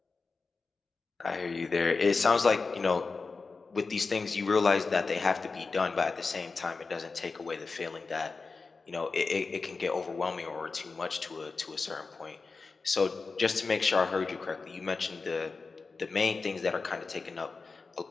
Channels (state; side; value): quieter; right; 4.3 dB